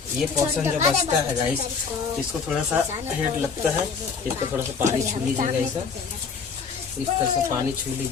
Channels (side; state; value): right; quieter; 5.5 dB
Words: ये पोर्शन जो बचता है गाइस इसको थोड़ा सा हेड लगता है, इसको थोड़ा सा पानी छू लीजिएगा, इस तरह से पानी छू